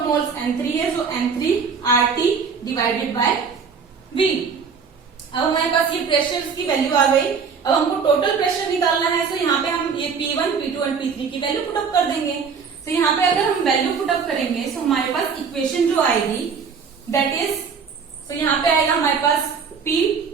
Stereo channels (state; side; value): quieter; left; 5.9 dB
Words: मोल्स N3 है, सो N3RT डिवाइडेड बाय V। अब हमारे पास ये प्रेशर की वैल्यू आ गई। अब हमको टोटल प्रेशर निकालना है, सो यहाँ पे हम ये P1, P2 एंड P3 की वैल्यू पुटअप कर देंगे। तो यहाँ पे अगर हम वैल्यू पुटअप करेंगे तो हमारे पास इक्वेशन जो आएगी दैट इज, सो यहाँ पे आएगा हमारे पास P